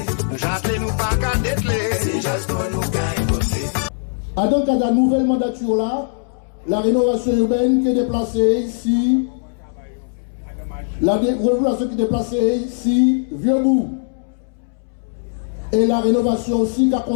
J'attends nous pas qu'à dételer. Si j'attends nous qu'à écouter. À donc à la nouvelle mandature là, la rénovation urbaine qui est déplacée ici, la rénovation qui est déplacée ici, Vieux-Bourg. Et la rénovation aussi qui a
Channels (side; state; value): right; silent; 66 dB below the other